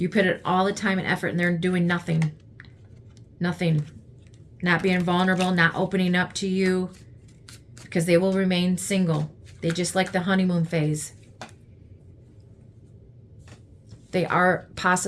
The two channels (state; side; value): identical; both; correlation 1.00